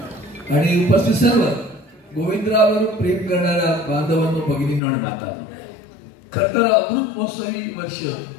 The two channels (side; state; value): right; drops out; at 4.8 s